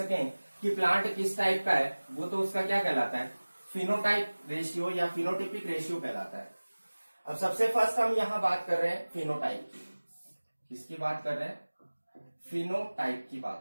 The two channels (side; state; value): both; inverted; correlation -1.00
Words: कि प्लांट किस टाइप का है, वो तो उसका क्या कहलाता है, फिनोटाइप रेशियो या फिनोटिपिक रेशियो कहलाता है। अब सबसे फर्स्ट हम यहाँ बात कर रहे हैं फिनोटाइप की। किसकी बात कर रहे हैं? फिनोटाइप की